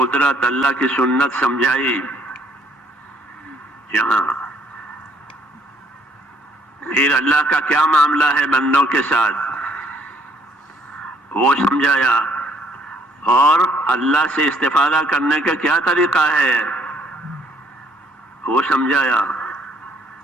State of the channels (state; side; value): normal; both; correlation 0.64